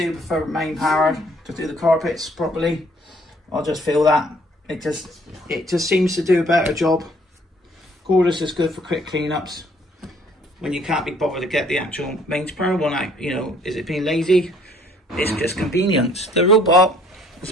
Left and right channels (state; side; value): normal; both; correlation 0.61